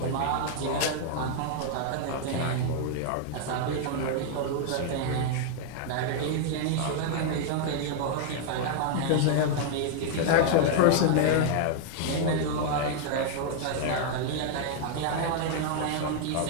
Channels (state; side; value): different; both; correlation 0.00